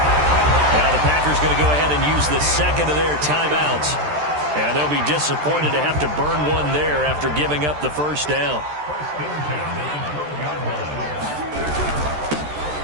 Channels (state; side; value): late; left; 13 ms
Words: Now the Packers going to go ahead and use the 2nd of their timeouts. And they'll be disappointed to have to burn one there after giving up the 1st down.